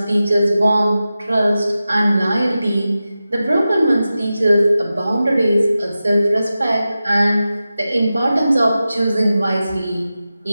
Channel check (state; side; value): inverted; both; correlation -0.93